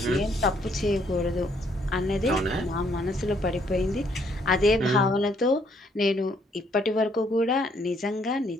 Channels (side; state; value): both; normal; correlation 0.68